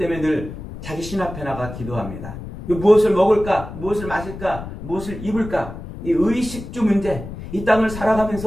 늘 자기 신 앞에 나가 기도합니다. 무엇을 먹을까, 무엇을 마실까, 무엇을 입을까, 이 의식주 문제, 이 땅을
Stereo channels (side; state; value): left; noise; rumble, 11 dB below the sound